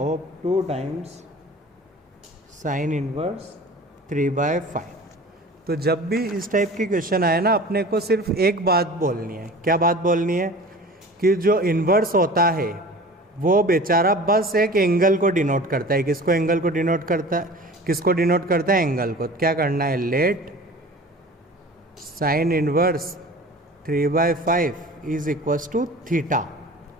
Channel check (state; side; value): normal; both; correlation 0.40